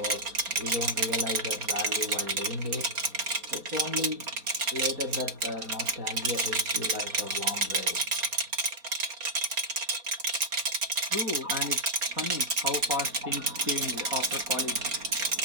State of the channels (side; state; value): left; late; 4.3 ms